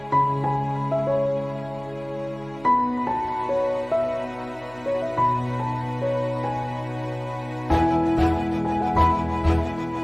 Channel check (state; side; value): noise; right; hum, 23 dB below the sound